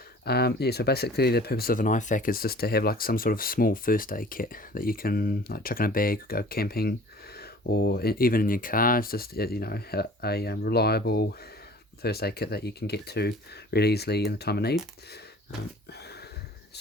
Yeah, so basically the purpose of an IFAK is just to have like some sort of small first aid kit that you can like chuck in a bag, go camping, or even in your car. It's just a reliable first aid kit that you can get to really easily in the time of need.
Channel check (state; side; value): normal; both; correlation 0.47